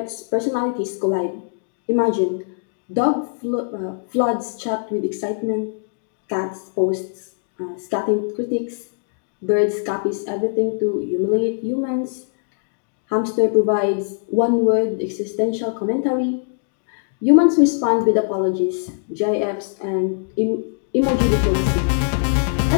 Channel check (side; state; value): right; silent; digital silence